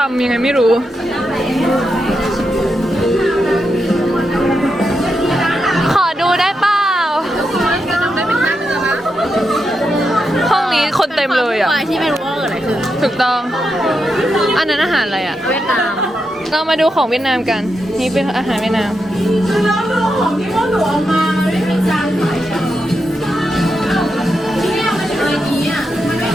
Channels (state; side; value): normal; both; correlation 0.85